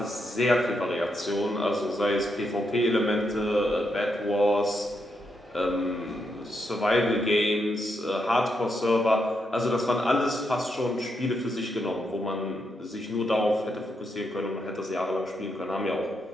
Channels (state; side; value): normal; both; correlation 0.81